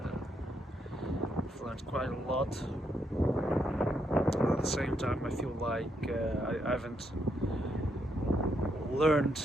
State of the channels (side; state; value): both; normal; correlation 0.77